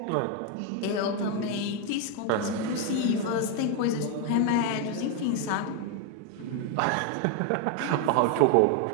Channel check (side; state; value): both; different; correlation 0.01